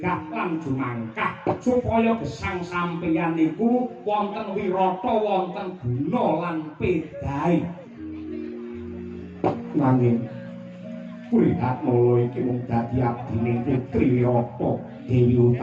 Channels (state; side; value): identical; both; correlation 1.00